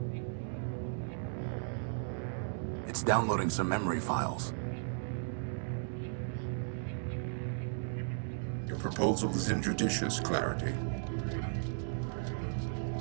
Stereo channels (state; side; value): silent; left; digital silence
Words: It's downloading some memory files. Your proposal is injudicious, Clarity.